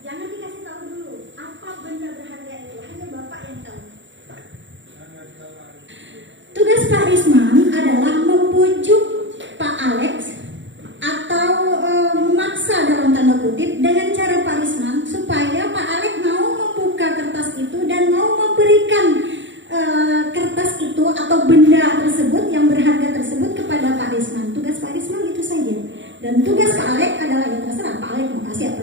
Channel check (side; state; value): left; late; 0.54 ms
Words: jangan dikasih tahu dulu apa benda berharga itu, hanya Bapak yang tahu. Tugas Pak Risman adalah membujuk Pak Alex atau memaksa dalam tanda kutip dengan cara Pak Risman supaya Pak Alex mau membuka kertas itu dan mau memberikan kertas itu atau benda tersebut yang berharga tersebut kepada Pak Risman. Tugas Pak Risman itu saja. Dan tugas Pak Alex adalah ya terserah Pak Alex mau kasih apa